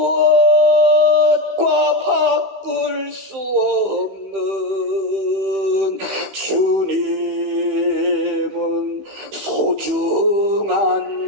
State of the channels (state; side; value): late; left; 15 ms